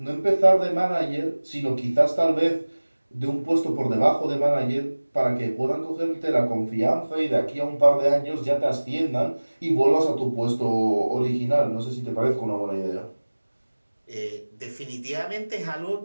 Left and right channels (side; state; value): both; inverted; correlation -1.00